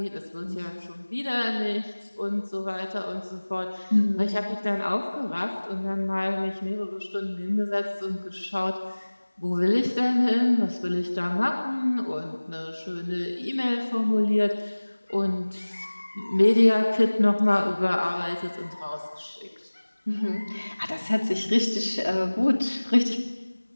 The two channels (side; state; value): both; inverted; correlation -1.00